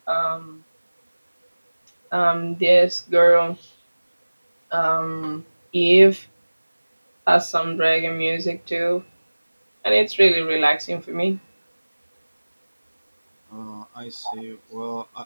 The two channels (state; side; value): inverted; both; correlation -1.00